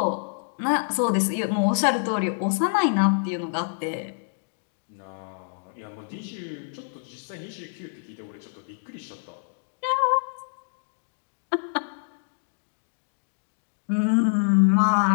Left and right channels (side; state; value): right; silent; digital silence